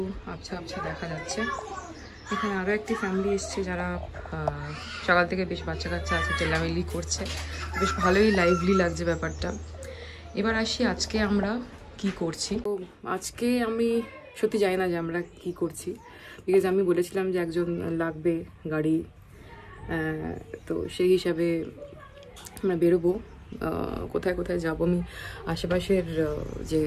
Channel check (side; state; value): both; identical; correlation 1.00